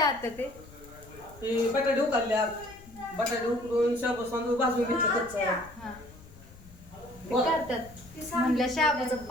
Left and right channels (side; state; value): left; noise; rumble, 21 dB below the sound